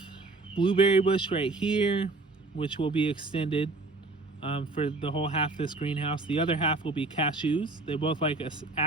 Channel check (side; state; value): left; quieter; 3.4 dB